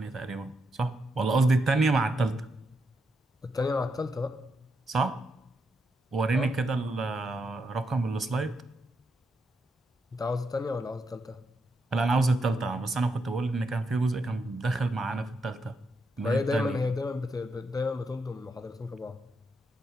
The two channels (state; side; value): normal; both; correlation 0.82